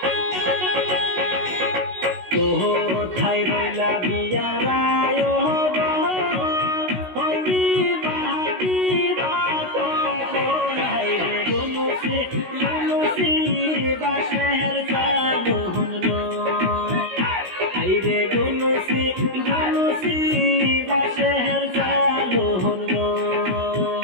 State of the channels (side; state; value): left; late; 16 ms